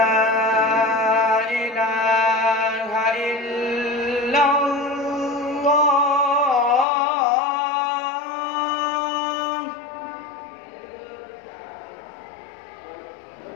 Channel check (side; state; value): right; drops out; at 6.9 s